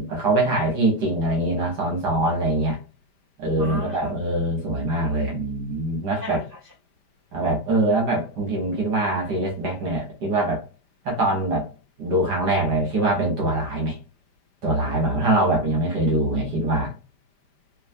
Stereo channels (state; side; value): late; left; 5.0 ms